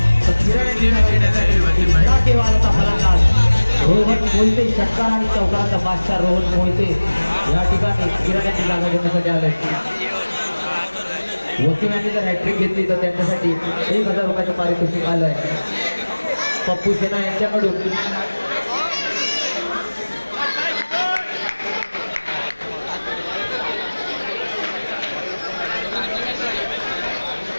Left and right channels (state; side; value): inverted; both; correlation -1.00